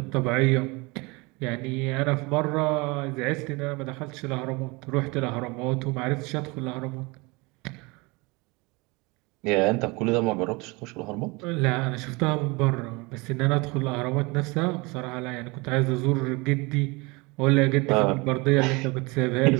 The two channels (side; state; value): left; quieter; 26.0 dB